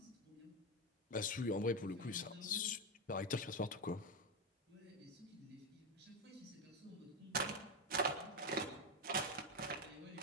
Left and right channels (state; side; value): normal; both; correlation 0.11